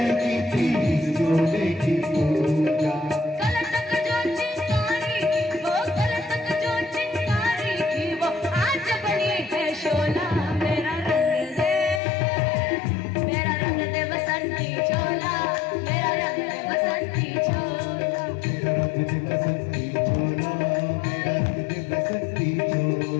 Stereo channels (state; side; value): drops out; right; at 12.0 s